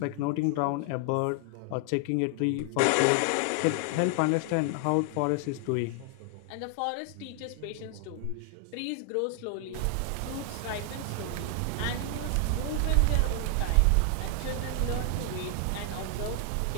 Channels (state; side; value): different; both; correlation 0.00